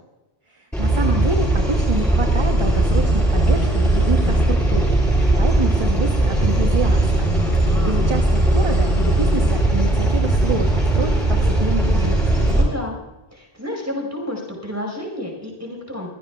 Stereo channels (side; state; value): both; normal; correlation 0.67